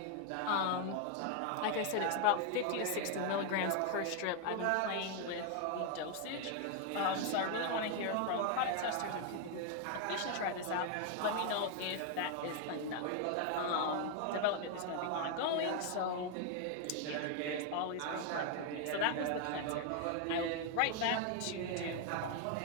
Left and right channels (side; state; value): both; different; correlation 0.00